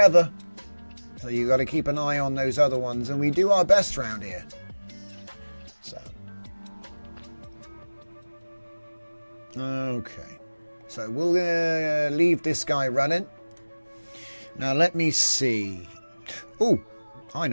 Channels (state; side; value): inverted; both; correlation -1.00